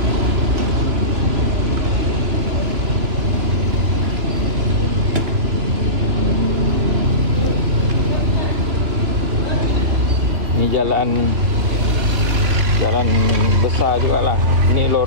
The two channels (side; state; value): left; late; 3.0 ms